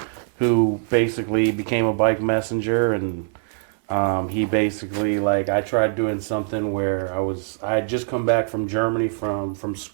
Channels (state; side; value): silent; left; 64 dB below the other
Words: who basically became a bike messenger, and he basically, like, I tried doing something where I had just come back from Germany from